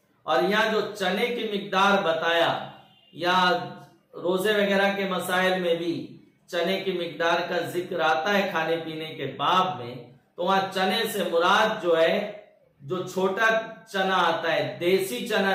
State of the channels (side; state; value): both; identical; correlation 1.00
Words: اور یہاں جو چنے کی مقدار بتایا، یا روزے وغیرہ کے مسائل میں بھی چنے کی مقدار کا ذکر آتا ہے کھانے پینے کے باب میں، تو وہاں چنے سے مراد جو ہے جو چھوٹا چنا آتا ہے، دیسی چنا